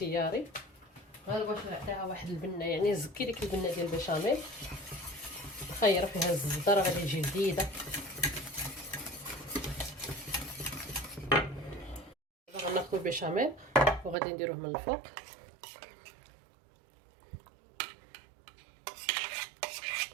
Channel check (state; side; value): drops out; left; at 14.2 s